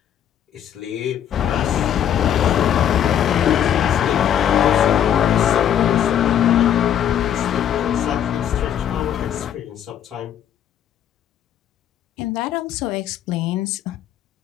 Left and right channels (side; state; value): right; quieter; 9.8 dB